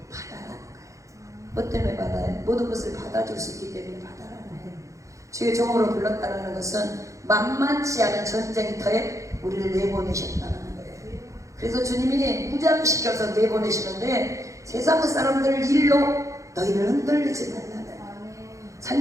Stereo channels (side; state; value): left; late; 0.15 ms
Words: 바다라는 거예요. 뭐 때문에 바다예요? 모든 것을 받아줄 수 있기 때문에 바다라는 거예요. 주의 종으로 불렀다는 것은 만만치 않은 전쟁터에 우리를 내보내셨다는 거예요. 그래서 주님이 무장시켜서 내보내시는데, 세상 사람들 일로 너희를 흔들리지 말라는 거예요.